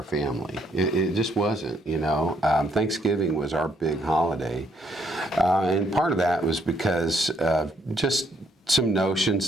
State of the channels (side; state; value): both; normal; correlation 0.71